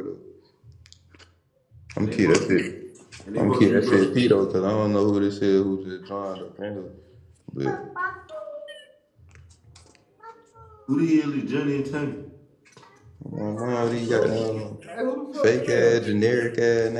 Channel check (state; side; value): identical; both; correlation 1.00